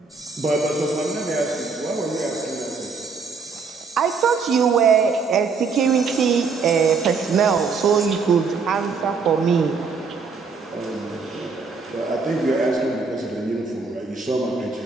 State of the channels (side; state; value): left; quieter; 4.9 dB